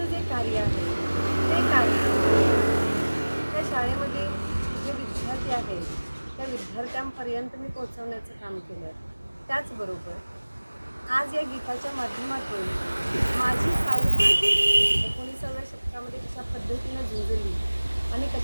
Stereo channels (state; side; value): inverted; both; correlation -1.00